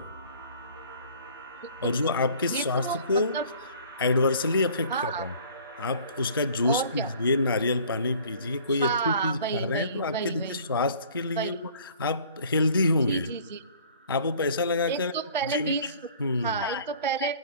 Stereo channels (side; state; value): both; inverted; correlation -0.51